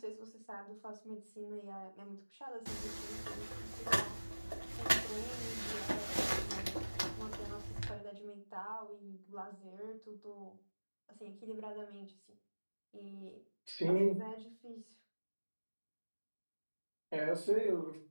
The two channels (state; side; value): inverted; both; correlation -1.00